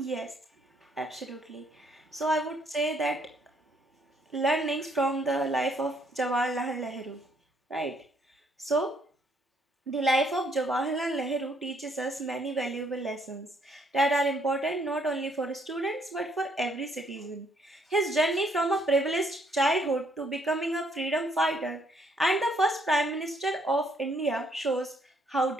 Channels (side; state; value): both; normal; correlation 0.68